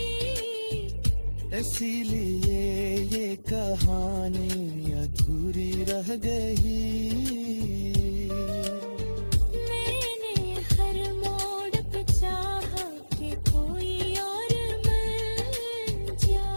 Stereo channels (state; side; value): inverted; both; correlation -1.00